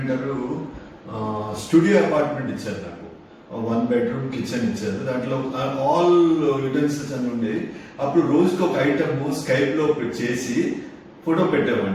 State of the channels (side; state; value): both; identical; correlation 1.00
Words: స్టూడియో అపార్ట్మెంట్ ఇచ్చారు. నాకు 1 bedroom కిచెన్ ఇచ్చారు. దాంట్లో ఆల్ యూటెన్సిల్స్ అని ఉండేవి. అప్పుడు రోజుకి ఒక ఐటమ్ స్కైప్లో చేసి ఫోటో